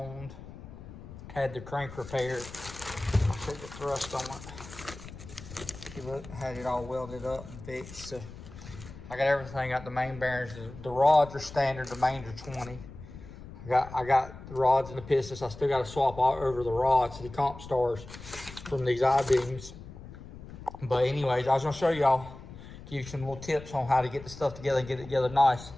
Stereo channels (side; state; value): left; noise; rumble, 15 dB below the sound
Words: had the crank repaired. I'll show you the thrust on it. See, look, had it all welded up and fixed. So I got everything. Got the main bearings. The rods are standard. The mains are 20. I got the rods and the pistons. I still got to swap all over the rods, the comp stars from these I-beams. But anyways, I was gonna show y'all, give you some little tips on how to get the stuff together and get it together nice.